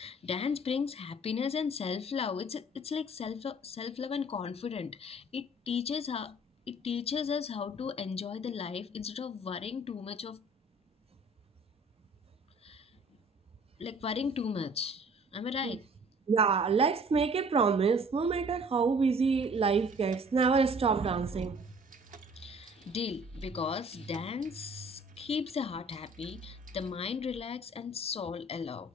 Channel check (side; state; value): both; normal; correlation 0.53